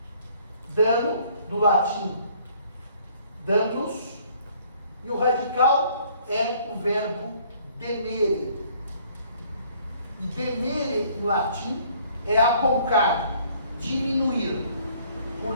Dano, do latim, danos, e o radical é o verbo demere. E demere, em latim, é aponcar, diminuir.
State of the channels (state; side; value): inverted; both; correlation -0.60